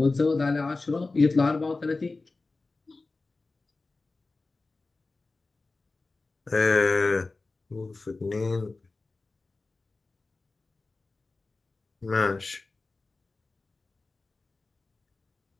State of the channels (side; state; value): right; quieter; 3.5 dB